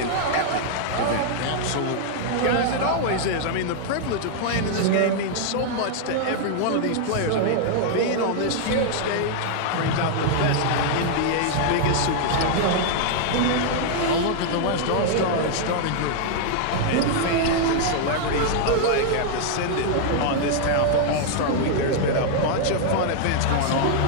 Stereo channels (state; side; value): different; both; correlation 0.00